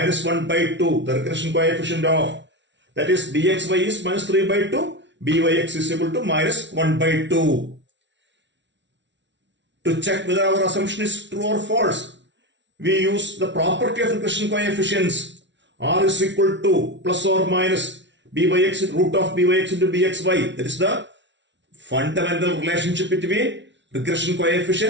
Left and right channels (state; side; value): late; left; 0.52 ms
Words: 1 by 2, the regression coefficient of, that is bxy is minus 3 by 2, byx is equal to minus 1 by 2. To check whether our assumption is true or false, we use the property of regression coefficients. R is equal to plus or minus byx root of byx into bxy. That is the fundamental relationship between regression